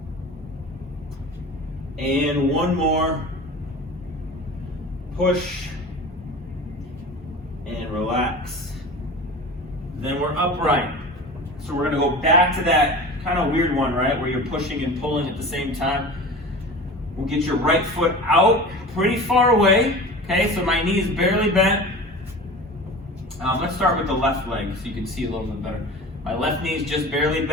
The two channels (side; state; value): both; normal; correlation 0.35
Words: And 1 more. Push. And relax. Then we're upright. So we're going to go back to that kind of weird one, right? Where you're pushing and pulling at the same time. We'll get your right foot out pretty far away. Okay, so my knee's barely bent. Let's start with the left leg so you can see a little bit better. My left knee's just barely